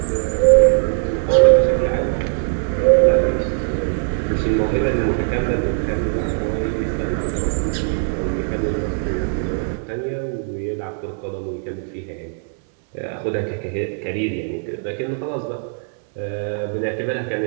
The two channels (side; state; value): left; silent; digital silence